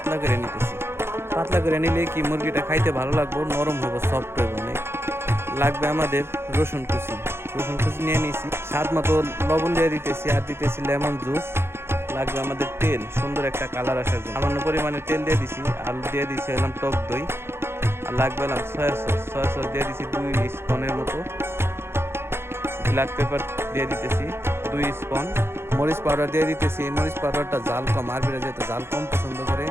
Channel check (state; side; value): late; left; 0.12 ms